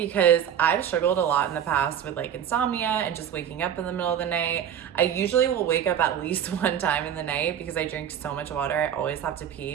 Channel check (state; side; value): quieter; left; 9.3 dB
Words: I've struggled a lot in the past with like insomnia and just waking up in the middle of the night. I usually will wake up at least one time in the night because I drink so much water. I always have to